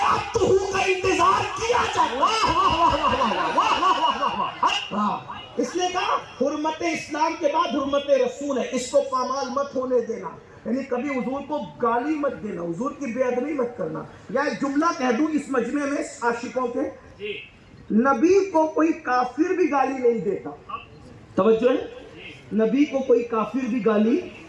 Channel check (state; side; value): identical; both; correlation 1.00